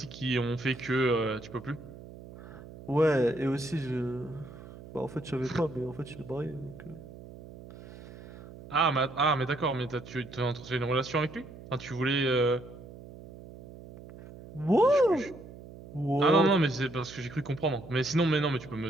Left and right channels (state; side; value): noise; right; hum, 16 dB below the sound